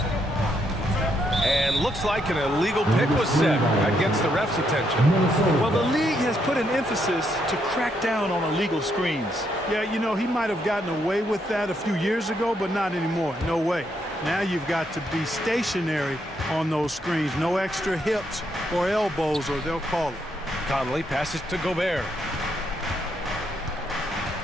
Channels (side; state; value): both; normal; correlation 0.76